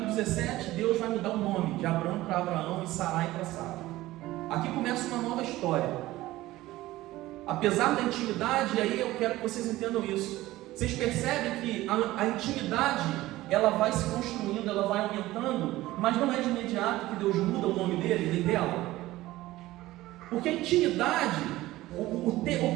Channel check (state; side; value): quieter; left; 17.1 dB